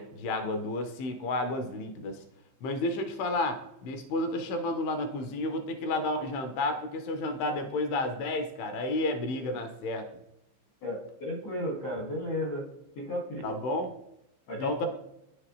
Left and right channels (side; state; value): right; late; 15 ms